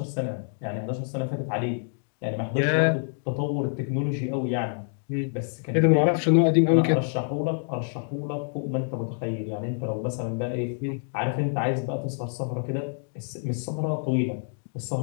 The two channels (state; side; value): silent; right; digital silence